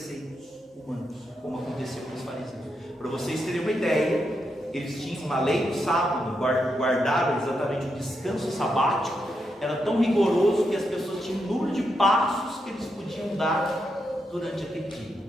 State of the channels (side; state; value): both; normal; correlation 0.83